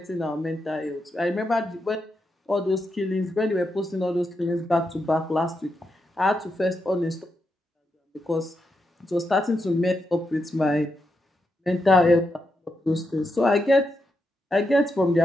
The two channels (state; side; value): normal; both; correlation 0.84